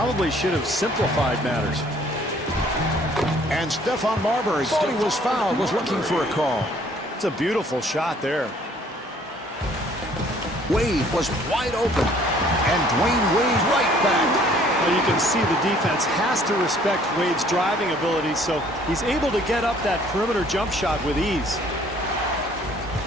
should have simplified matters. And Stephon Marbury thought he was fouled, was looking for a call. It's a beautiful shot there. Wade was wide open. And Dwayne Wade right back. Well, you can see the defense has to respect Wade's driving ability, so he's able to get up that perimeter jump shot with ease.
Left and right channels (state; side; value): normal; both; correlation 0.59